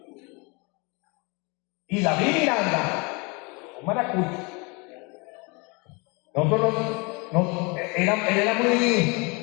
Y David Miranda, un maracucho,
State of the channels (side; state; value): right; quieter; 29.5 dB